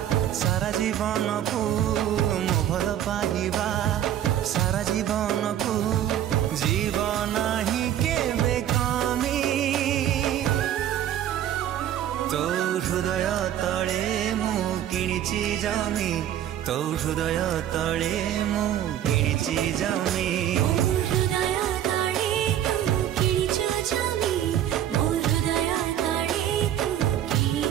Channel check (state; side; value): quieter; left; 11.1 dB